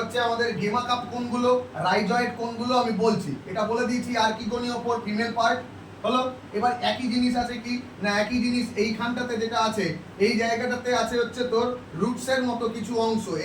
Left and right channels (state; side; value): identical; both; correlation 1.00